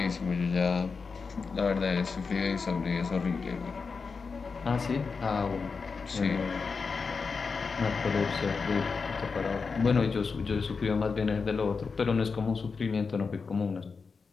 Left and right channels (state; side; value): quieter; right; 4.9 dB